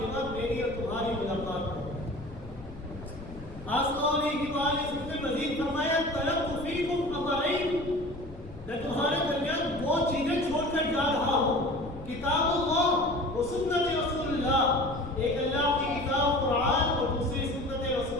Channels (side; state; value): left; noise; rumble, 15 dB below the sound